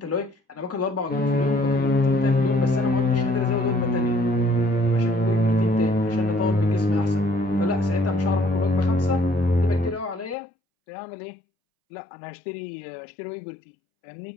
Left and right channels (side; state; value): right; drops out; at 10.4 s